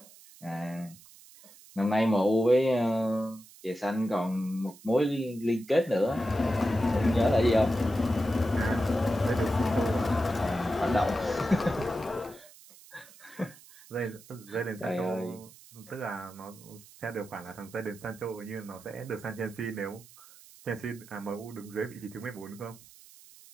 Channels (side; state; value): right; noise; hiss, 22 dB below the sound